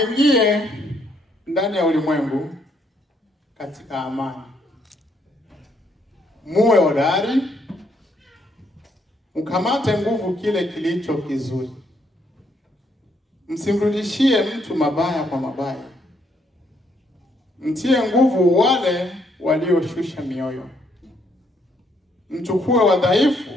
ndani ya ulimwengu katika amani. Muwe hodari, mkamate nguvu kile kilicho kizuri. Msimrudishie mtu mabaya kwa mabaya. Mtie nguvu wale walioshusha mioyo. Mchukue wadhaifu,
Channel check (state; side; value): normal; both; correlation 0.72